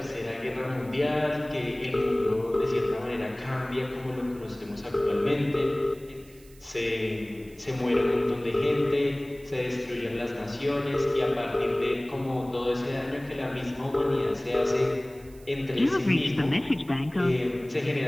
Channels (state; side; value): noise; right; hiss, 26 dB below the sound